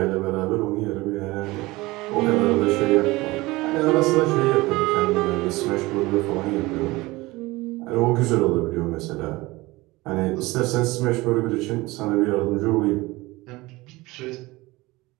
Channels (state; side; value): quieter; left; 20.9 dB